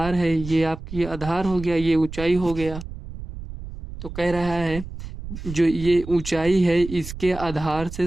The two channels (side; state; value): right; noise; rumble, 11 dB below the sound